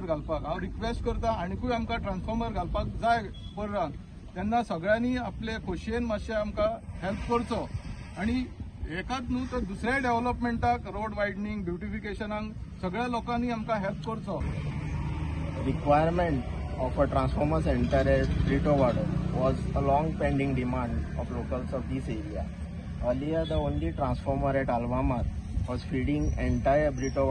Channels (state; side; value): identical; both; correlation 1.00